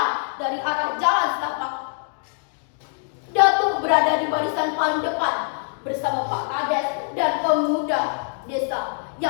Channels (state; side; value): silent; right; digital silence